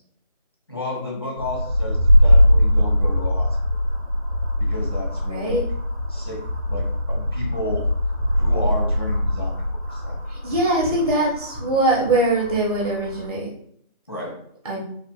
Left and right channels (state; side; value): inverted; both; correlation -0.70